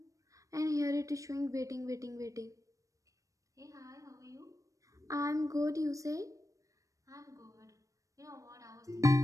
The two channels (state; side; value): late; left; 0.16 ms